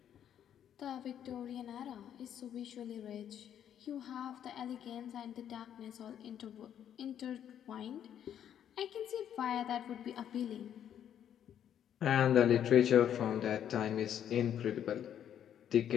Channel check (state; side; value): quieter; right; 9.7 dB